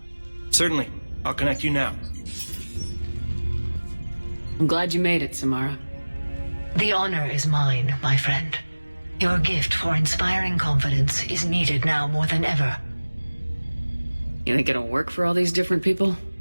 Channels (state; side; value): inverted; both; correlation -1.00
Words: Certainly. I'll connect you now. I'm glad you made it, Samara. The honor is mine, my friend. Your gift for inspiring confidence is needed now more than ever. You think it'll work for all these different people?